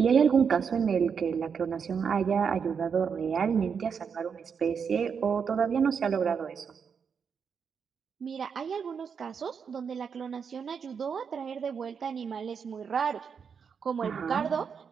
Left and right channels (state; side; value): quieter; left; 6.5 dB